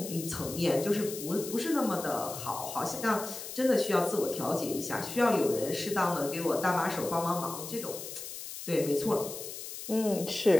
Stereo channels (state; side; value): noise; left; hiss, 9 dB below the sound